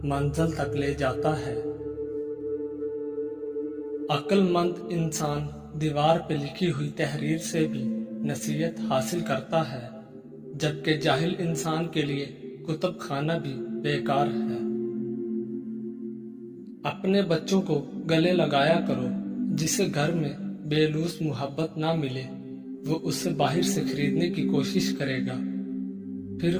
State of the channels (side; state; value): both; identical; correlation 1.00